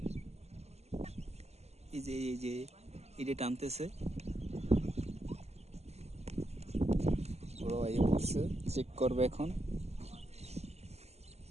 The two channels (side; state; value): left; late; 0.31 ms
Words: এই যে টানতেছে, বড় ভাই পড়ছে, চেক করবে এখন।